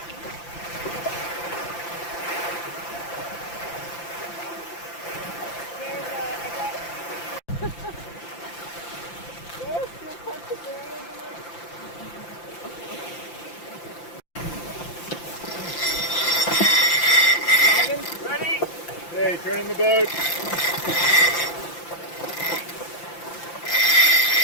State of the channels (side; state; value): right; late; 5.8 ms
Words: Ready? Hey, turn in the boat.